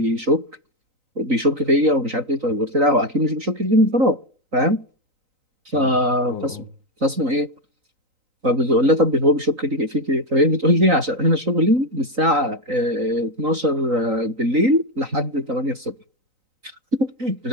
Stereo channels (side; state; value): left; late; 3.9 ms